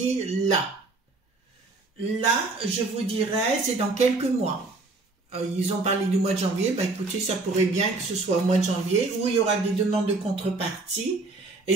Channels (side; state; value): left; quieter; 3.4 dB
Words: là. Là, je vous dirais, c'est dans quelques mois. Ils ont parlé du mois de janvier. Ben, écoutez, ça pourrait bien que ce soit au mois de janvier où il y aura des demandes de contrepartie. Et